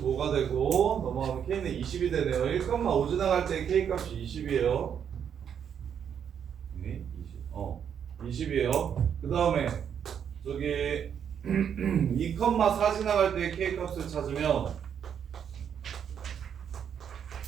되고 넘어가면 K는 20이 되네요. 1,5 지나갈 때 K 값이 20이에요. 네, 20. 20이에요. 그 다음에 저기 2,4 지나갈 때 K 값을 찾으면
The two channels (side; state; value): left; quieter; 8.2 dB